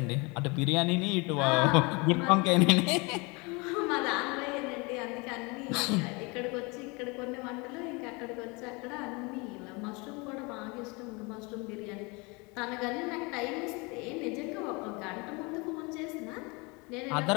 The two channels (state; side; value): quieter; right; 27.9 dB